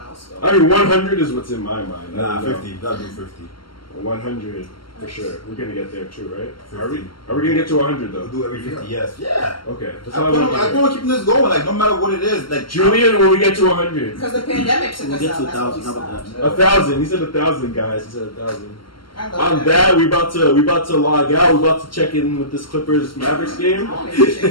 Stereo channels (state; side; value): late; right; 0.73 ms